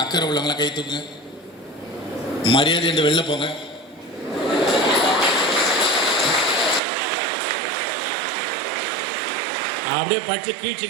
அக்கறை உள்ளவங்களாம் கை தூக்குங்க. மரியாதை என்று வெளில போங்க. அப்படியே படிச்சு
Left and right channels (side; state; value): left; drops out; at 6.8 s